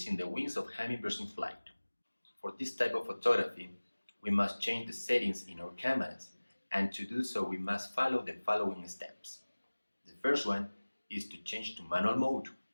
the wings of hummingbirds in flight. For this type of photography, we must change the settings in our cameras, and to do so we must follow the following steps. The first one is to change to manual mode.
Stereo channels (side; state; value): both; inverted; correlation -1.00